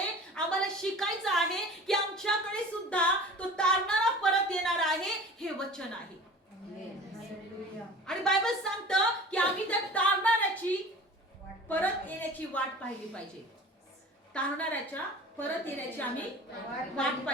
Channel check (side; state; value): both; normal; correlation 0.41